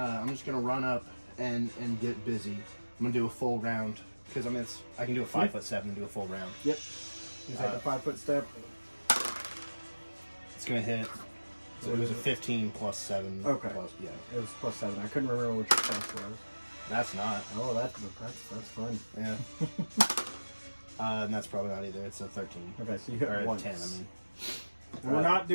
just going to run up and get busy. I'm going to do a full round. Because, I mean, I can do a 5'7" and do a full round. Yep. You take a 5-foot step. It's going to hit. So it was a 15 plus 7. Okay. Plus, yeah. It was plus 7. I couldn't remember what your plus was. That's not. Oh, that's fun. Yeah. And that's probably not either. It's a 13. Okay, so you hit Or once. 10, I mean. And we're not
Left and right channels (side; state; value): both; inverted; correlation -1.00